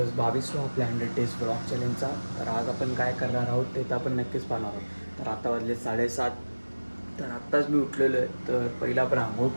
22वा आपल्या 100 डेज ब्लॉग चॅलेंजचा. तर आज आपण काय करणार आहोत ते तर आपण नक्कीच पाहणार आहोत. तर आता वाजले 7:30. तर आत्ताच मी उठलेलो आहे. तर पहिला आपण आंघोळ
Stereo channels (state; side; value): inverted; both; correlation -1.00